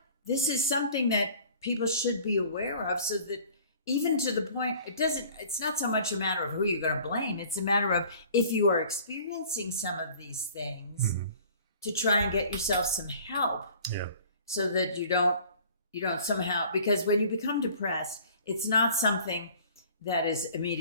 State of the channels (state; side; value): inverted; both; correlation -0.49